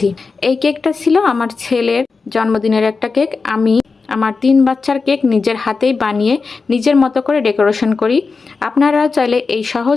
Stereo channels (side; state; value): right; quieter; 4.5 dB